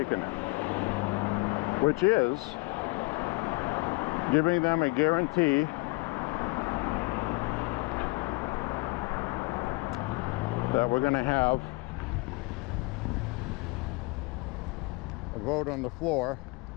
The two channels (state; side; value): quieter; right; 25.6 dB